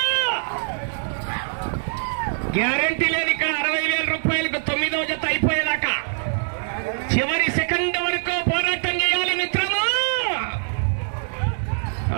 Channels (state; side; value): silent; left; 63 dB below the other